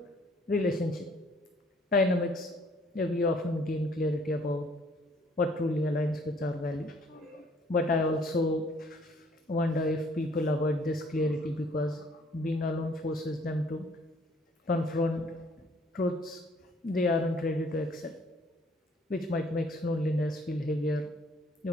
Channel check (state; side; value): normal; both; correlation 0.61